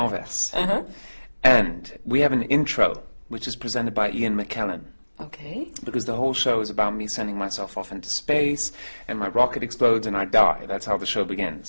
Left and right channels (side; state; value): both; inverted; correlation -1.00